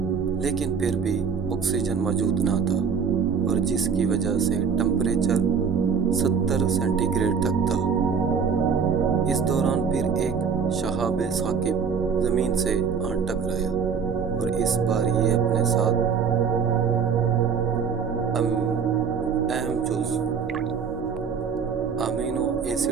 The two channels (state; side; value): quieter; left; 6.3 dB